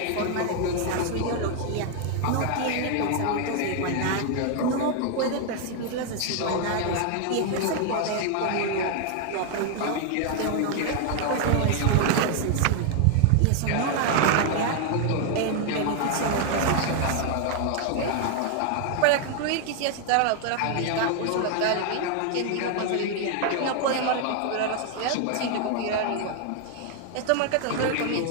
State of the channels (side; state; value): both; different; correlation 0.00